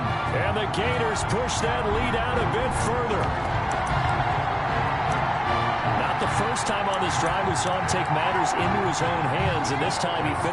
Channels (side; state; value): both; identical; correlation 1.00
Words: And the Gators push that lead out a bit further. Not the first time on this drive we saw him take matters into his own hands, and this time he